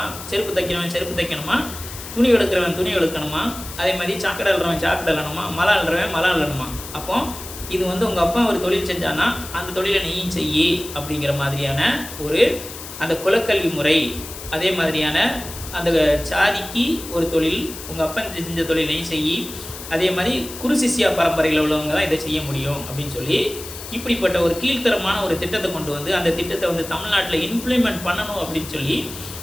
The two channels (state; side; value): noise; left; hiss, 12 dB below the sound